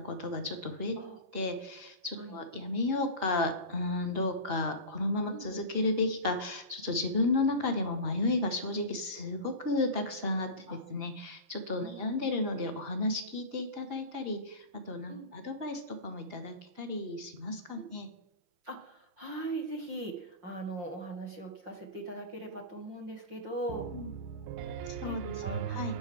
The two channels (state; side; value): late; left; 5.4 ms